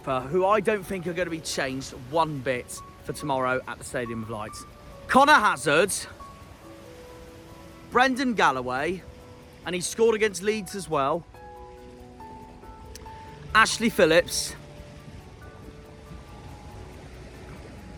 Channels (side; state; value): both; identical; correlation 1.00